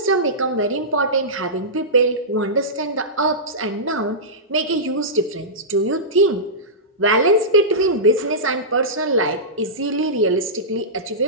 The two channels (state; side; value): normal; both; correlation -0.16